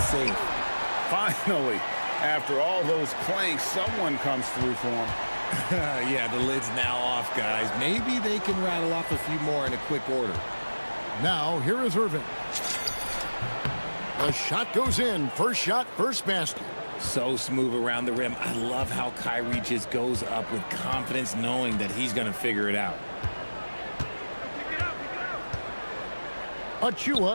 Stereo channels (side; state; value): both; inverted; correlation -1.00